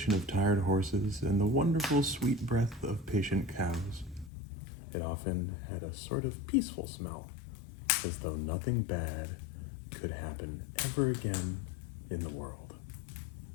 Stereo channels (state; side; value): drops out; right; at 4.3 s